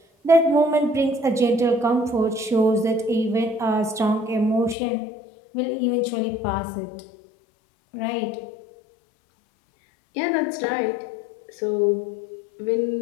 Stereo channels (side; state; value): right; drops out; at 4.8 s